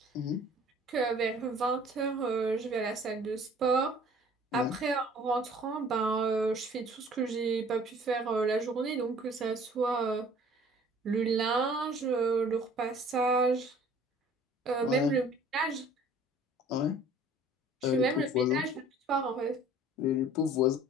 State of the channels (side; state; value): both; normal; correlation 0.51